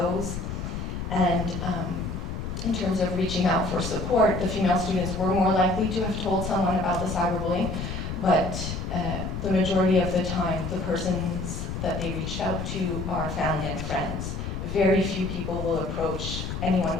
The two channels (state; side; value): noise; left; rumble, 5 dB below the sound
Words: And in terms of reaching out for support, the female students were more likely to have told someone about the cyberbullying, but the majority of the time, the persons that they reached out to are family and friends. Very few people will approach anyone